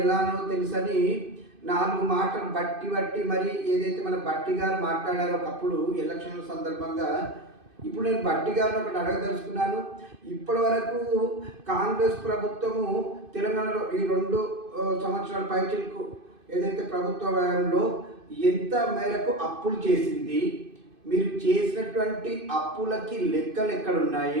తెలుసని 4 మాటలు బట్టి మరి ఏదైతే మన బట్టి గారు మాట్లాడారో ఒకప్పుడు ఎలక్షన్ల సందర్భంగా, ఇప్పుడు నేను బట్టి గారిని ఒకటి అడగదలుచుకున్నాను. ఇప్పటి వరకు కాంగ్రెస్ ప్రభుత్వము తెలంగాణలో ఈ 2 సంవత్సరాల పైచిలకు ఏదైతే ప్రభుత్వ వ్యయంలో ఎంత మేరకు అప్పులు చేసింది, మీరు చేసినటువంటి అప్పులకి లెక్కలు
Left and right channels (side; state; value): left; late; 2.5 ms